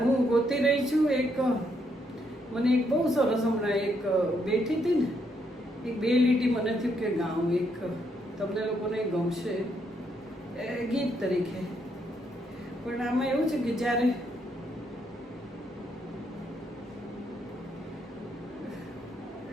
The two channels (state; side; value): normal; both; correlation 0.75